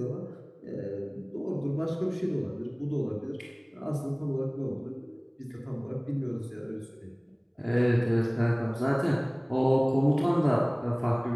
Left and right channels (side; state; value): both; identical; correlation 1.00